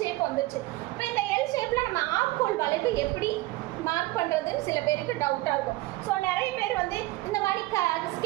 வந்துருச்சு. இப்போ இந்த எல் ஷேப்பில் நம்ம ஆம்கோல் வளைவு எப்படி மார்க் பண்ணுறதுன்னு சில பேருக்கு டவுட்டாக இருக்கும். ஸோ நிறைய பேர் வந்து இந்த மாதிரி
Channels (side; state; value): left; quieter; 19.4 dB